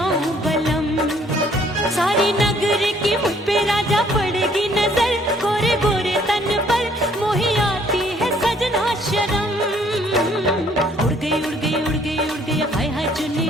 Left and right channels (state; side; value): normal; both; correlation 0.62